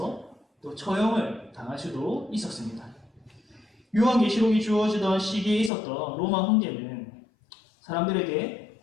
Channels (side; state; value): right; drops out; at 5.7 s